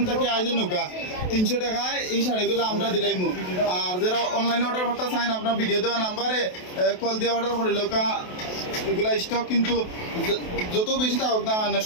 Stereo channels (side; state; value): right; late; 28 ms